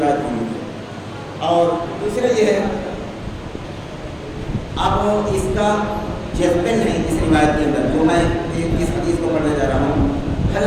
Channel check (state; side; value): identical; both; correlation 1.00